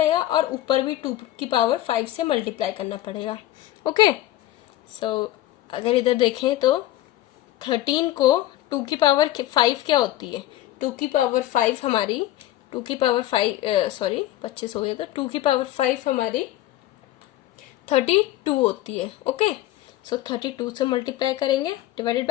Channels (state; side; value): quieter; right; 14.8 dB